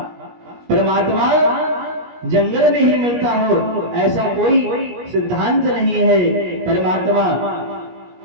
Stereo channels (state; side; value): late; left; 17 ms